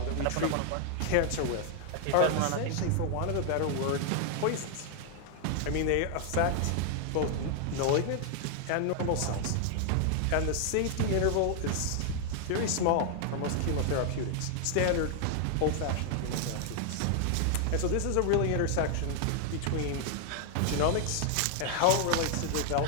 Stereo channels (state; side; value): different; both; correlation 0.00